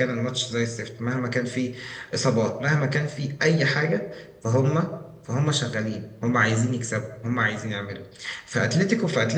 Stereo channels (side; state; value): both; identical; correlation 1.00